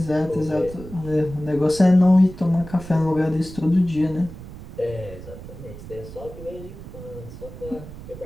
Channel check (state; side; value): noise; right; rumble, 14 dB below the sound